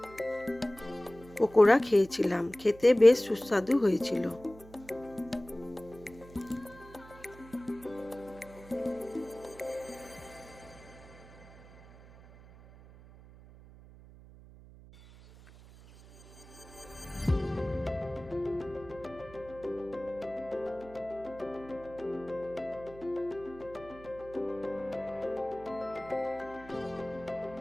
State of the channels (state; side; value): noise; right; hum, 20 dB below the sound